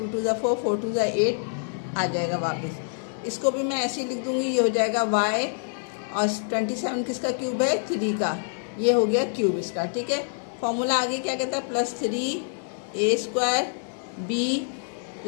2 ज़ा 4, 4 2 ज़ा 8 आ जाएगा वापस। इसको भी मैं ऐसे ही लिख दूँगी, ये हो जाएगा y, और 27 किसका क्यूब है? 3 का। ये हो गया क्यूब इसका। ठीक है, फॉर्मूला आगे क्या कहता है? +3a² b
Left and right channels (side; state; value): right; silent; digital silence